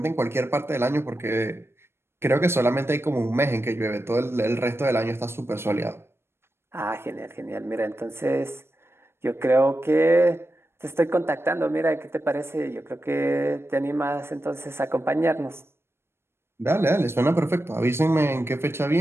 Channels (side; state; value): left; late; 0.12 ms